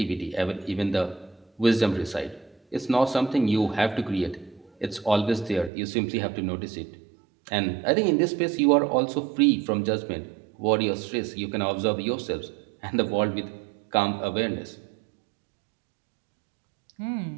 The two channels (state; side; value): drops out; left; at 5.7 s